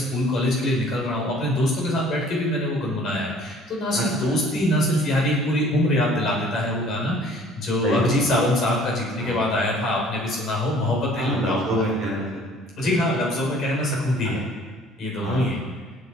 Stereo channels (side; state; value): both; normal; correlation 0.53